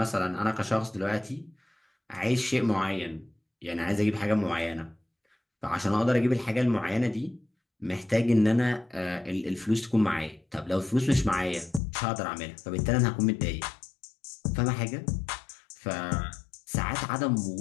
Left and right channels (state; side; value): drops out; right; at 11.8 s